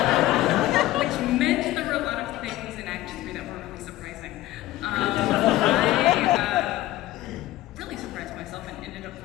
which meant there were a lot of things in Act 3 that were really surprising. I really surprised myself and ended up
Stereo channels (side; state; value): right; quieter; 16.0 dB